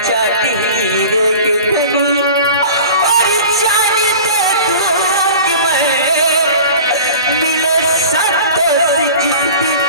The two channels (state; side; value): inverted; both; correlation -0.39